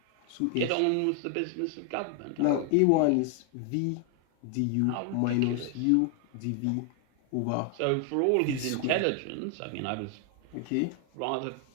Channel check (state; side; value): different; both; correlation 0.00